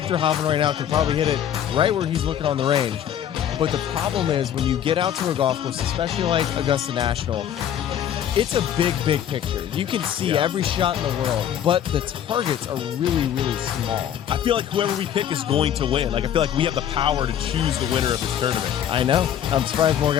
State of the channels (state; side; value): quieter; right; 9.9 dB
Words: Hovland right now can probably hit it right where he's looking on the range. But the problem is when you get out to a golf course, especially like Augusta National, it's a big picture. You can see every shot in the world, but the targets are really, really small. I feel like whoever we pick is going to win. Like, I feel like we have the power to choose the winner of this tournament. I know. I'm surprised more